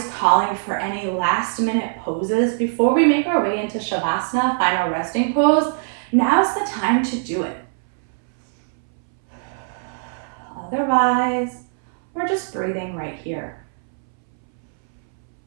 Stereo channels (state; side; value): silent; left; 65 dB below the other